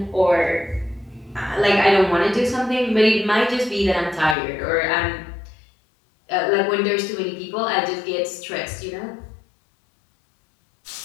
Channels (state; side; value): drops out; right; at 4.4 s